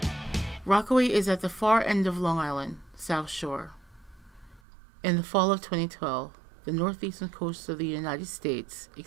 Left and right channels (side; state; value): left; drops out; at 4.6 s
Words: Rockaway is at the far end of Long Island, South Shore. In the fall of 2012, the northeastern coast of the United States